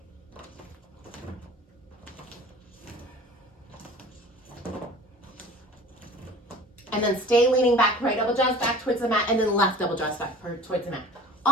And then stay leaning back, right elbow draws back towards the mat, and then left elbow draws back towards the mat.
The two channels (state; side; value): normal; both; correlation 0.42